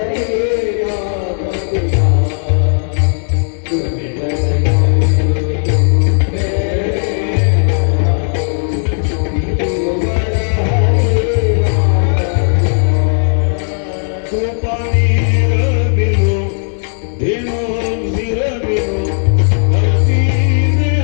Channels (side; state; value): right; silent; digital silence